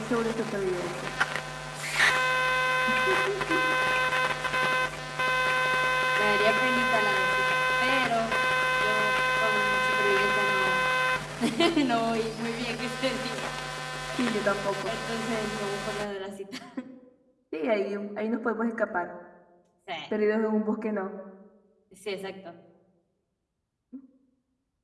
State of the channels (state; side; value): identical; both; correlation 1.00